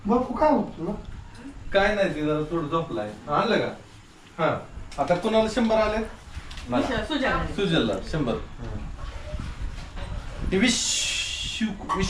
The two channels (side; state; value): both; identical; correlation 1.00